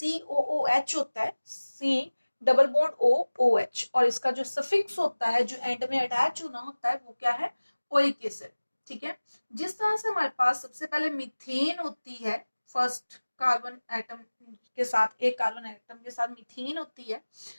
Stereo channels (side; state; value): both; inverted; correlation -1.00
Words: होता है, C डबल बॉन्ड OOH, और इसका जो सफिक्स होता है जो एंड में अटैच होना होता है वो क्या है, ओइक एसिड। ठीक है, जिस तरह से हमारे पास सबसे पहले मीथेन होती है, फर्स्ट कार्बन एटम के साथ, एक कार्बन एटम के साथ मीथेन होती है।